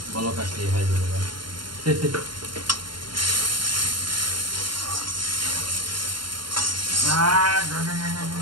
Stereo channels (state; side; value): late; left; 0.72 ms